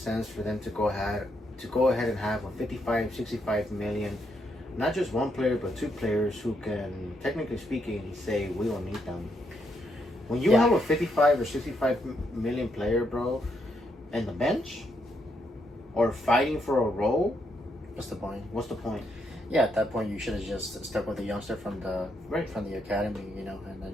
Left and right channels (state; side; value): normal; both; correlation 0.78